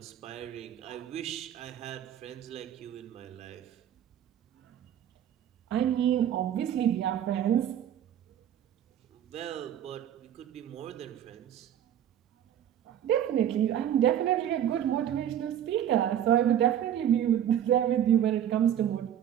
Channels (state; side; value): quieter; left; 10.2 dB